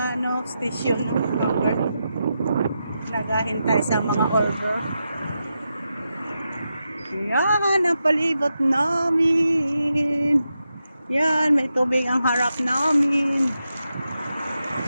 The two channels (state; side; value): inverted; both; correlation -0.88